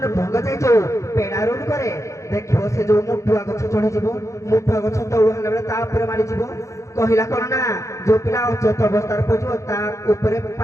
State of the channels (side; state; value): right; late; 0.15 ms